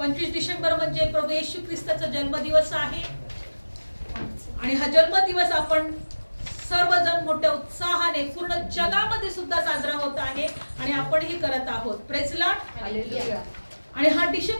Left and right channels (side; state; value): both; inverted; correlation -1.00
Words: डिसेंबर म्हणजे प्रभू येशू ख्रिस्ताचा जन्मदिवस आहे, आणि हा जन्मदिवस आपण सर्वजण मोठ्या उत्साहाने पूर्ण जगामध्ये सुद्धा साजरा होत आहे, आणि आपणही करत आहोत। Praise the lord, hallelujah. आणि हा